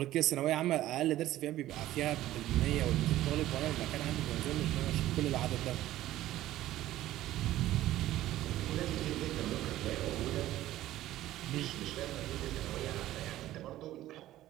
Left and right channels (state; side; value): quieter; left; 14.5 dB